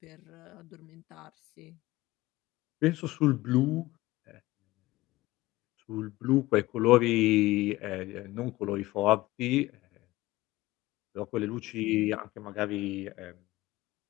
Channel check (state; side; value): quieter; right; 18.6 dB